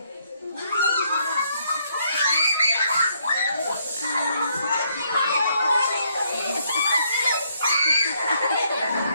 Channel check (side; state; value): both; inverted; correlation -0.71